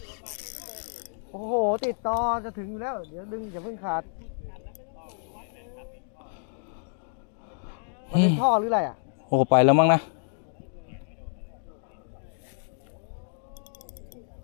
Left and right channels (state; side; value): silent; right; digital silence